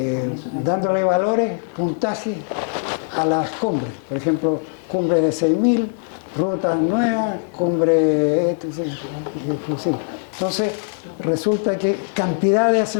dándole valores, puntajes a las cumbres. Por ejemplo, cumbre de 6.000, rutas nuevas, cumbre... Entonces, resulta que cantidad de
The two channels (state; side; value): silent; right; 65 dB below the other